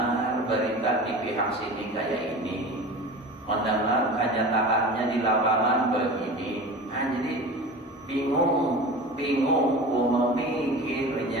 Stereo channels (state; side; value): normal; both; correlation 0.34